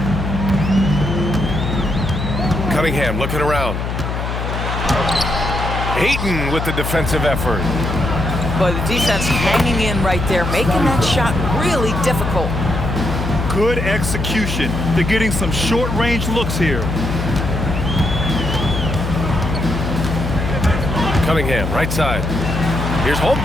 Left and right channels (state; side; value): noise; left; hum, 3 dB below the sound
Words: Cunningham looking around. Ayton with the defensive effort. But the defense hanging in right there, making that shot really difficult. Good execution. They're getting some short-range looks here. Cunningham, right side. Here's